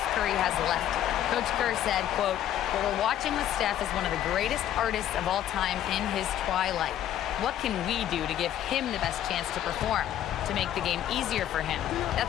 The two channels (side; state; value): right; quieter; 11.4 dB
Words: Curry has left. Coach Kerr said, quote, "What we're watching with Steph is one of the greatest artists of all time in his twilight. What can we do to give him the best chance to perform, to make the game easier for him?"